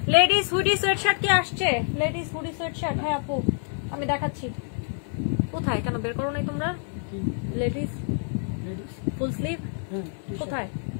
লেডিস হুডি সোয়েটশার্ট কি আসছে? লেডিস হুডি সোয়েটশার্ট, হ্যাঁ আপু আমি দেখাচ্ছি। কোথায়, কেন বের করো নাই তোমরা? লেডিস ফুল স্লিভ কোথায়,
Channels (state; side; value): silent; right; 57 dB below the other